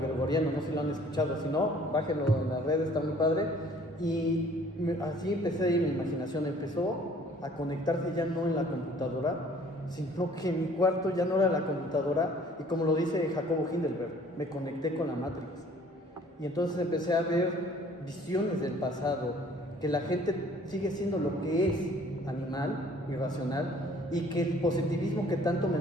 no sé si lo han escuchado, si no, bájenlo en las redes, está muy padre. Y así empecé, y mi imaginación empezó a conectarse ya no en la computadora, sino que mi cuarto ya no era la computadora, y como lo dice Jacobo Hindelberg, me conecté con la Matrix. Y entonces empecé a ver visiones del pasado, que la gente sigue siendo lo que es, animal, irracional, y que el positivismo que tanto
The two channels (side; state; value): both; normal; correlation 0.55